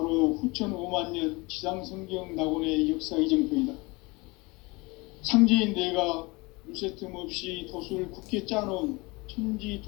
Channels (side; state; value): right; quieter; 25.2 dB